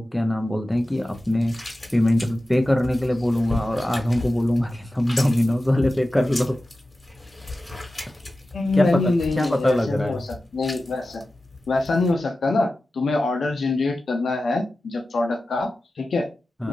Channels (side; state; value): both; normal; correlation 0.94